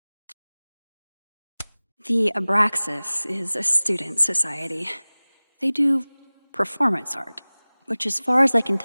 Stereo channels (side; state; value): both; inverted; correlation -1.00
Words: The Abraxas is a student society. They do performance art, which, as far as I can